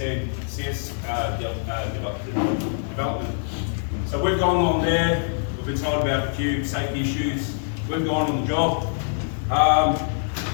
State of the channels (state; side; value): silent; right; 59 dB below the other